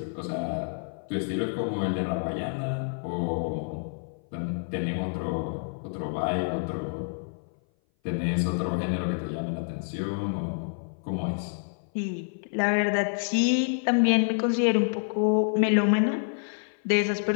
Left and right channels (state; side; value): silent; right; 57 dB below the other